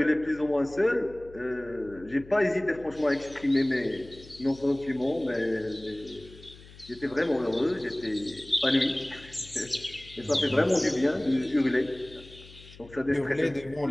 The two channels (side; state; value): left; noise; hum, 20 dB below the sound